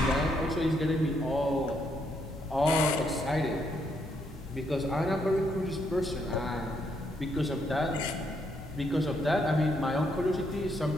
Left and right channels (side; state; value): both; normal; correlation 0.75